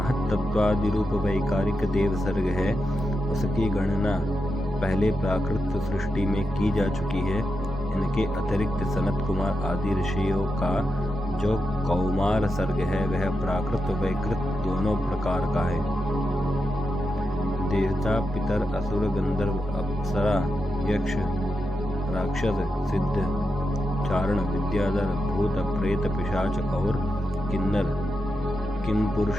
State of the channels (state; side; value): normal; both; correlation 0.88